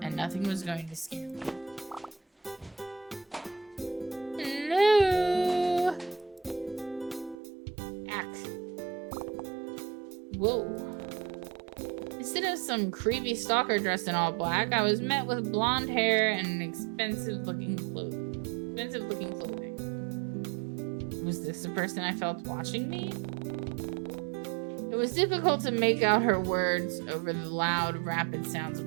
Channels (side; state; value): left; drops out; at 7.4 s